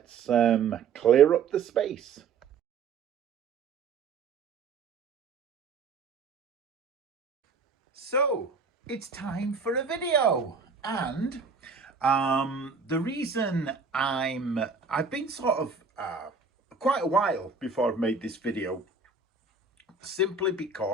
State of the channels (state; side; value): quieter; left; 4.9 dB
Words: clear up the space. So, it's time for a video. And the reason I've been sort of quite a while before I've made this video, simply